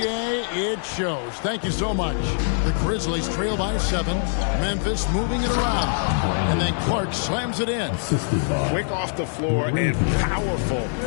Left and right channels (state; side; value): silent; right; digital silence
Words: It shows. Thank you so much. The Grizzlies trail by 7. Memphis moving it around. And then Clark slams it in. Quick off the floor and powerful.